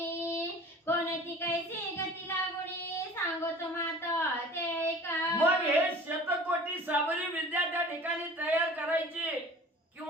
कोणती कैसी गती लागुणी सांगतो माता ते ऐका. मग हे शतकोटी साबरी विद्या त्या ठिकाणी तयार करायची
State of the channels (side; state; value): both; normal; correlation 0.43